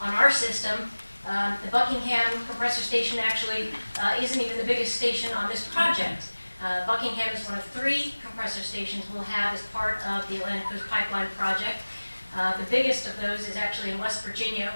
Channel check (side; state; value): both; inverted; correlation -1.00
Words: our system. The Buckingham compressor station actually isn't even the biggest station on this project. Buckingham is one of 3 compressor stations we'll have as part of the Atlantic Coast Pipeline project. The biggest of those is actually in West Virginia,